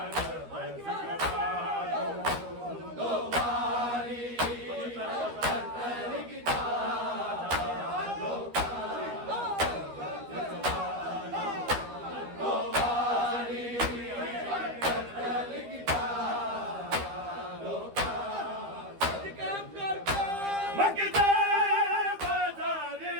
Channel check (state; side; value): late; left; 12 ms